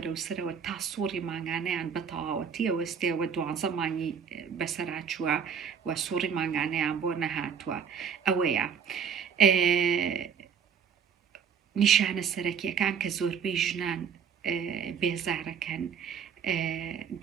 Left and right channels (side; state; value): left; quieter; 7.0 dB